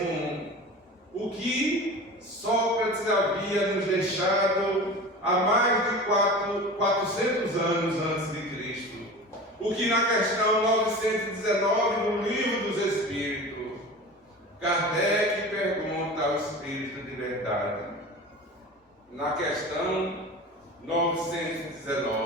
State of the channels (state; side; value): normal; both; correlation 0.34